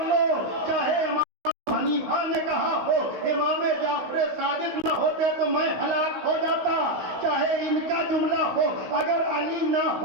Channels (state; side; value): late; left; 16 ms